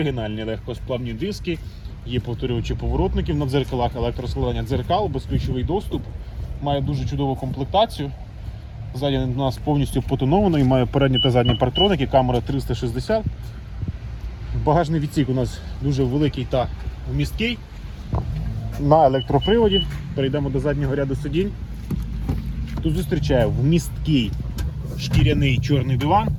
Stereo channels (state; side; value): identical; both; correlation 1.00